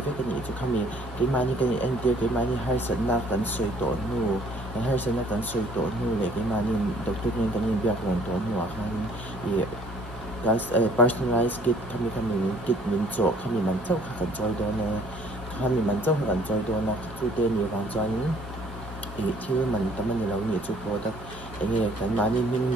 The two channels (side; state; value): both; normal; correlation 0.59